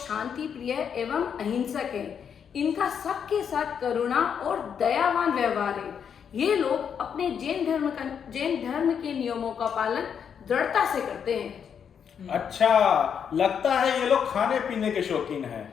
प्रिय एवं अहिंसक हैं। इनका सबके साथ करुणा और दयावान व्यवहार है। ये लोग अपने जैन धर्म के नियमों का पालन दृढ़ता से करते हैं। अच्छा, लगता है ये लोग खाने पीने के शौकीन हैं।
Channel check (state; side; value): quieter; right; 7.6 dB